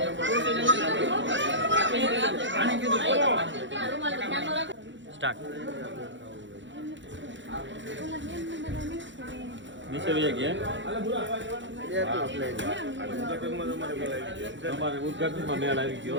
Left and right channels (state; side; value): late; left; 0.54 ms